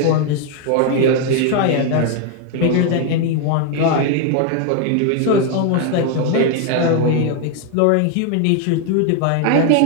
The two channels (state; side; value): different; both; correlation 0.01